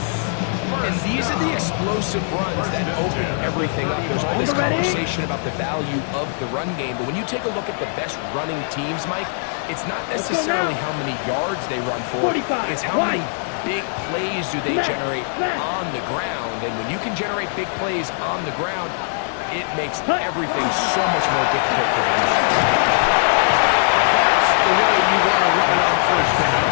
And these are the explosive runs that open everything up. There's all this conversation about the value of the run game, but when you take a look at the best running teams, Mike, it's not necessarily how many yards they run for. It's how many big plays do they generate on the ground. And when you can generate big plays on the ground, it makes everything so much more difficult for the defense. That's the way you want to run it on first down.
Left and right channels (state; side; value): silent; right; digital silence